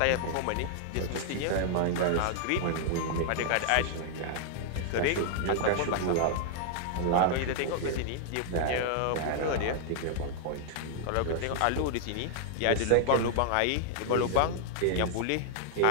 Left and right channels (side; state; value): both; different; correlation -0.01